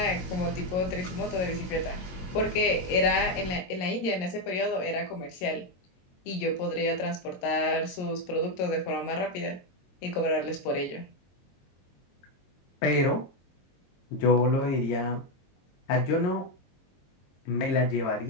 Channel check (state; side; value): late; right; 22 ms